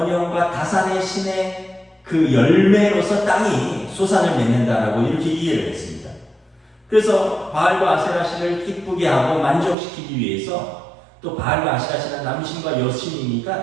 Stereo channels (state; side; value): drops out; left; at 9.8 s